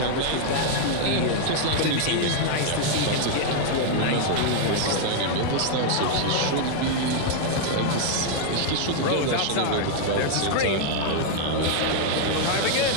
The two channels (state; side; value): different; both; correlation 0.00